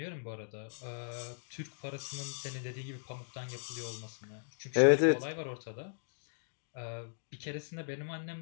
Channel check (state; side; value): silent; right; digital silence